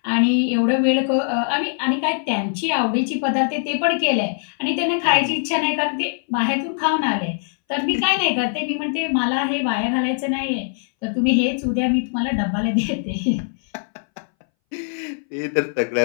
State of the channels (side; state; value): right; silent; 62 dB below the other